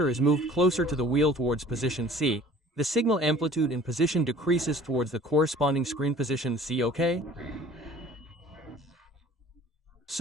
is moved closer to the wheel towards position C, the signal amplitude in position decreases towards the corresponding screen position C, okay?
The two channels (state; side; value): normal; both; correlation 0.49